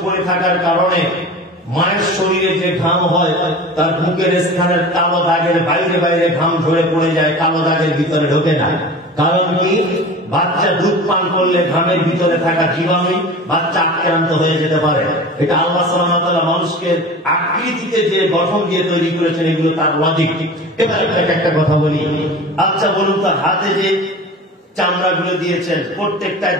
পরে থাকার কারণে মায়ের শরীরে যে ঘাম হয় তার বুকের স্থানের কালো দাগের বাইরে বাইরে ঘাম ঝরে পড়ে যায়, কালো দাগের ভিতরে ঢোকে না। কারণ কি? বাচ্চা দুধ পান করলে ঘামের ভিতরে থাকা জীবাণু বাচ্চা আক্রান্ত হয়ে যেতে পারে। এটা আল্লাহ সুবহানাহু ওয়া তাআলা মানুষকে আকৃতিতে যে গঠন দিয়ে তৈরি করেছেন, এগুলো তার লজিক। এবার একটা কথা বলি। আচ্ছা বলুন তো, হাতে যে চামড়াগুলো দিয়েছেন প্রত্যেকটায়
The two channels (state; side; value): normal; both; correlation 0.36